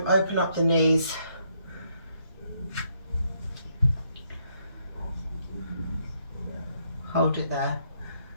open up the knees. Hold it there.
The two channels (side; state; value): both; inverted; correlation -0.73